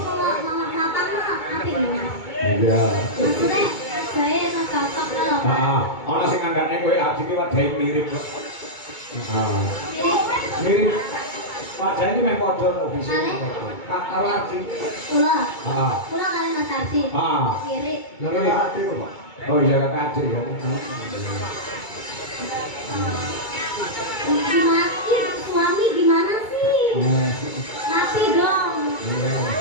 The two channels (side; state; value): right; late; 2.2 ms